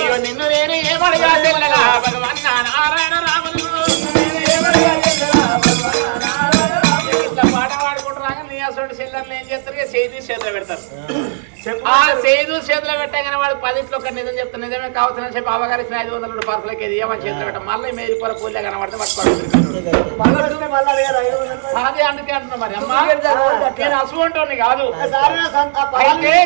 నిన్ను నేను ఏమడిగా తెల్లరా భగవన్ నారాయణ రాముడు ఇట్లా పాట పాడుకుంటున్నాక నీ అసలు చెల్లెళ్ళు ఏం చేస్తారు? చేతి చేతిలో పెడతారు. ఆ చేదు చేతిలో పెట్టగానే వాడు 10 ఒక నిజం చెప్తాను, నిజమే కావచ్చునని చెప్పి అవగారి 500 పార్సలకి ఏమని చేతిలో పెట్టాం. మళ్ళీ మేలిపోర పూలే కనబడితే పట్టుకోవాలి. అదే అందుకే అంటున్నా. మరి అమ్మా నేను అసువంటోని కాదు. అయితే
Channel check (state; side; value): silent; left; digital silence